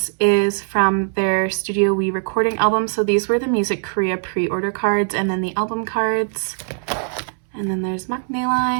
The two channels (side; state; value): left; silent; 65 dB below the other